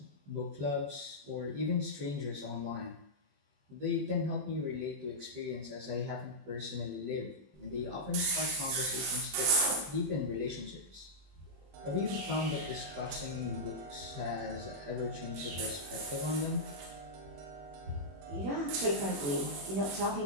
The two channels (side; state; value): left; late; 21 ms